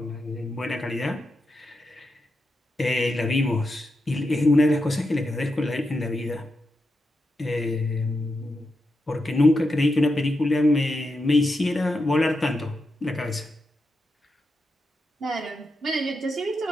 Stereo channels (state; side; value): normal; both; correlation 0.87